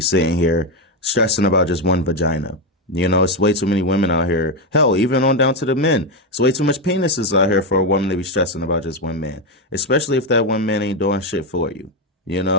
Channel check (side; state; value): both; normal; correlation 0.08